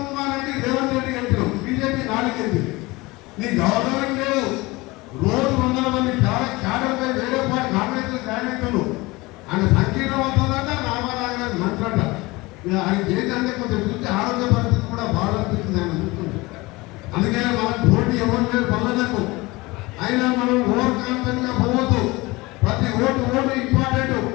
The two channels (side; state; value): right; quieter; 22.3 dB